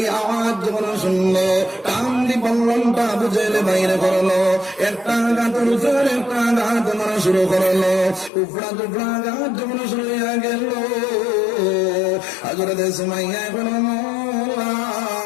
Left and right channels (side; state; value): right; drops out; at 8.3 s